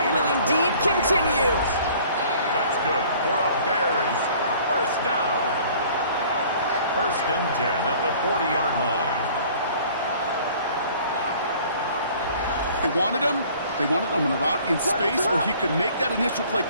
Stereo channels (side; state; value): both; inverted; correlation -0.52